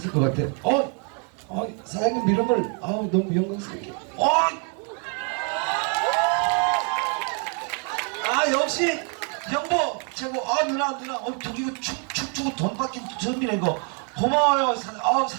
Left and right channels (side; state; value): left; quieter; 39.9 dB